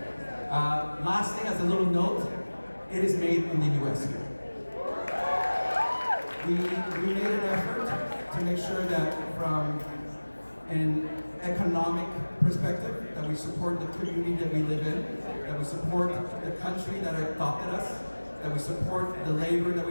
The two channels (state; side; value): inverted; both; correlation -1.00